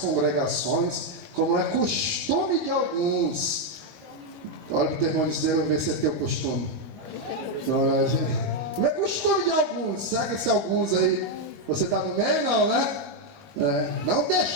como é costume de alguns. Olha para o teu irmão e diz, eu vou ver se é teu costume. Não é costume de alguns. Será que esse alguns aí, você está no meio? Não, né? Não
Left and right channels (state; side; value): late; left; 21 ms